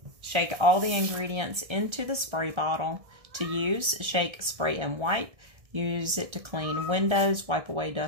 shake all the ingredients into the spray bottle. To use, shake, spray, and wipe. Use it to clean windows, wipe away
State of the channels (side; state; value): left; late; 1.6 ms